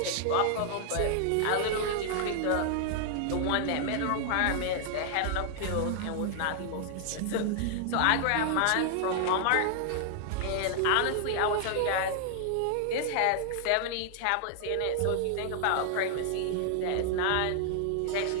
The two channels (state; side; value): different; both; correlation -0.01